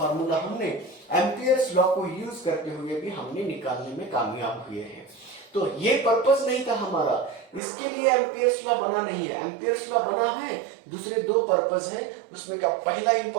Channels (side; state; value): left; drops out; at 7.6 s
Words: हमने एम्पियर्स लॉ को यूज करते हुए भी हमने निकालने में कामयाब हुए हैं। तो ये पर्पस नहीं था हमारा, इसके लिए एम्पियर्स लॉ बना नहीं है। एम्पियर्स लॉ बना है दूसरे दो पर्पस है। उसमें का पहला